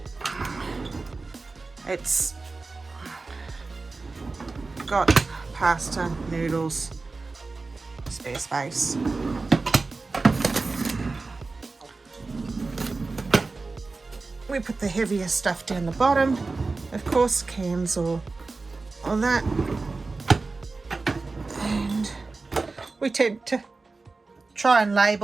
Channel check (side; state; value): left; quieter; 3.8 dB